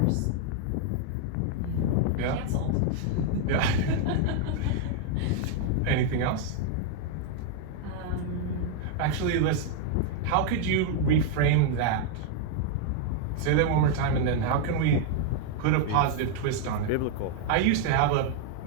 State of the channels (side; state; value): both; different; correlation 0.00